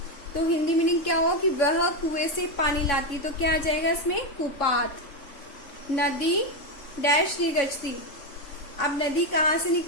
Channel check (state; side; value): late; right; 3.6 ms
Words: तो हिंदी मीनिंग क्या हो कि वह कुएं से पानी लाती, तो क्या आ जाएगा इसमें, कूपात। नदी डैश निगजती, अब नदी कहाँ से